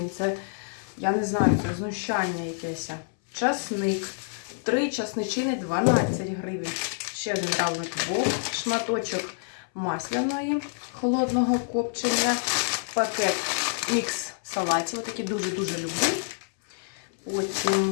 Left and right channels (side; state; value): right; silent; 60 dB below the other